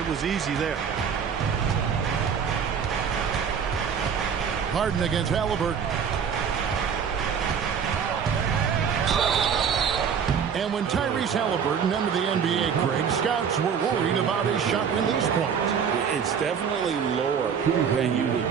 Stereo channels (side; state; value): left; quieter; 7.1 dB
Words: It was easy there. Harden against Halliburton. And when Tyrese Halliburton entered the NBA, Greg, scouts were worried about his shot release point. It's definitely lower than you